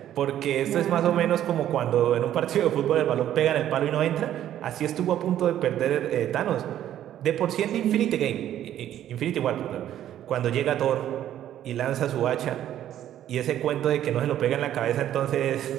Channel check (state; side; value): quieter; left; 11.6 dB